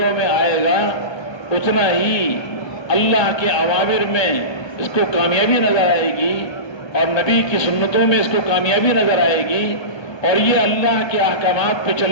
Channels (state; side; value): late; right; 1.2 ms